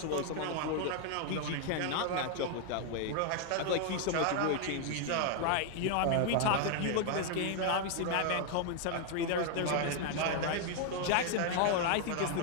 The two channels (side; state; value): both; different; correlation 0.00